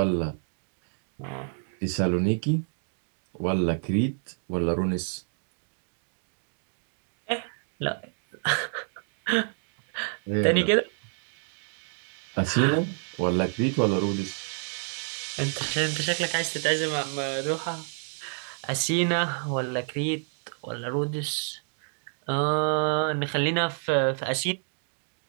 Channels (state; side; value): silent; left; 59 dB below the other